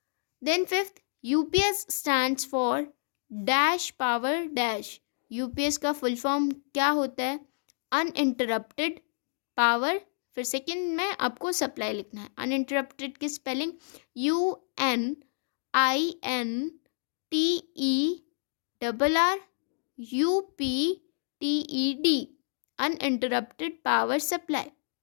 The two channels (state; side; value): silent; right; digital silence